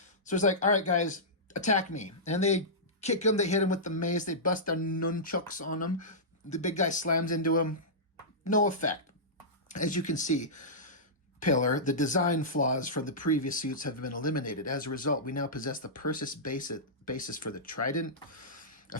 So it's like, all right, guys, attack me. And they kick him, they hit him with the mace, they bust their nunchucks on him. The big guy slams into him. No effect. As you can see, Pillar, the design flaws from the previous suits have been eliminated. As a result, we now possess the Persis basis for the Trident, a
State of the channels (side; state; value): both; normal; correlation -0.15